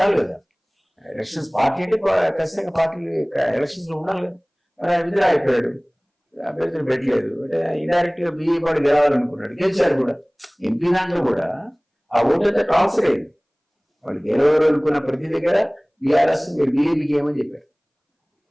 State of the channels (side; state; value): both; identical; correlation 1.00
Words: కదా. ఎలక్షన్స్ పార్టీ అంటే ఖచ్చితంగా పార్టీ ఎలక్షన్స్ లో ఉండాలి కదా. మరి ఆయన విధులు అయిపోయాడు, అభ్యర్థులు పెట్టలేదు అంటే ఇండైరెక్ట్ గా బీఏ పార్టీ గెలవాలనుకున్నాడు, గెలిచారు కూడా. ఎంపీ దాంట్లో కూడా ఆ ఓటు అంతా ట్రాన్స్ఫర్ అయింది. వాళ్ళు గెలవరు అనుకున్న ప్రతి దగ్గర బీఆర్ఎస్ మీరు బీజేపీకి ఏమని చెప్పారు.